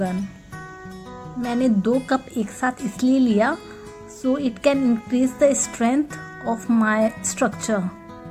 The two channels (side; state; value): both; identical; correlation 1.00